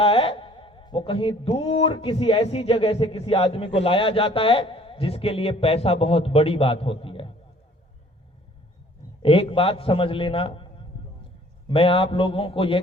है वो कहीं दूर किसी ऐसी जगह से किसी आदमी को लाया जाता है जिसके लिए पैसा बहुत बड़ी बात होती है। एक बात समझ लेना, मैं आप लोगों को यह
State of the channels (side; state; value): both; normal; correlation 0.55